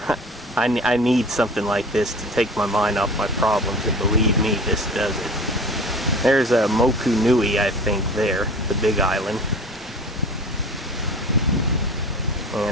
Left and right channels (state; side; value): normal; both; correlation 0.39